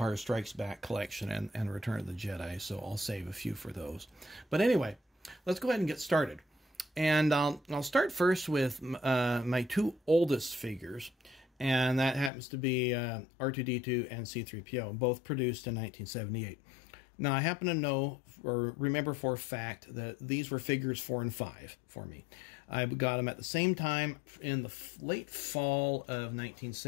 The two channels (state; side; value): drops out; right; at 12.3 s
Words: Strikes Back collection and Return of the Jedi, so I'll save a few for those. But anyway, let's go ahead and get started. And I'll start first with my two oldest figures, and that happens to be R2-D2 and C3PO, both produced in 1978. Now, I happen to know or remember for a fact that these were figures 4 and 5 for me. I got them at the same time in the late fall of